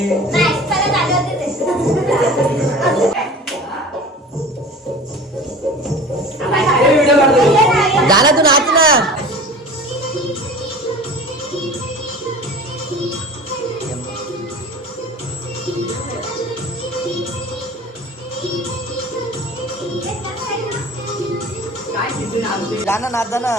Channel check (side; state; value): both; normal; correlation 0.39